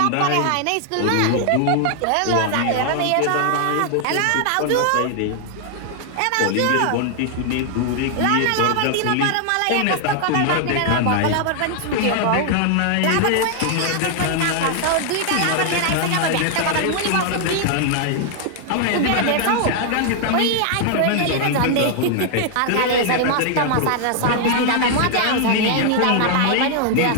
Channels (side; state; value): both; different; correlation 0.00